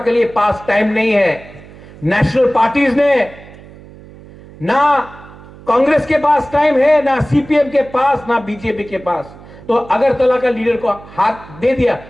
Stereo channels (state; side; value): noise; right; hum, 20 dB below the sound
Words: लिए पास टाइम नहीं है। नेशनल पार्टीज ने ना कांग्रेस के पास टाइम है, ना सीपीएम के पास, ना बीजेपी के पास। तो अगरतला का लीडर को हाथ दे दिया,